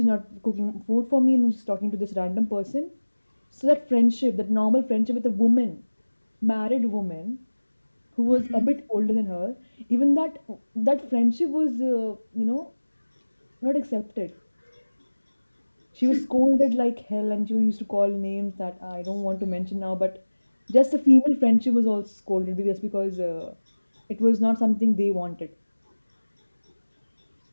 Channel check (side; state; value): both; inverted; correlation -1.00